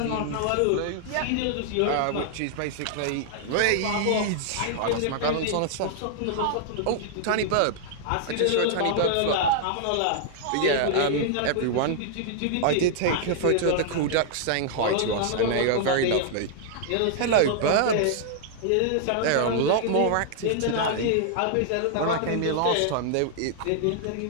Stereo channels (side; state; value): both; different; correlation -0.01